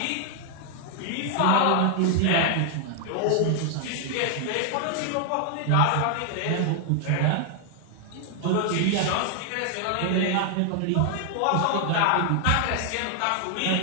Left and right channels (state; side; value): different; both; correlation 0.00